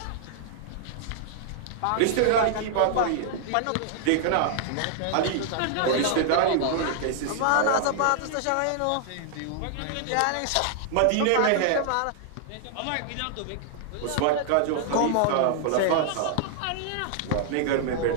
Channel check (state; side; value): different; both; correlation -0.01